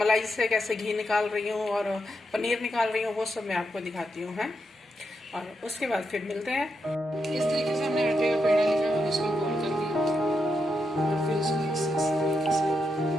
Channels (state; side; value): normal; both; correlation 0.83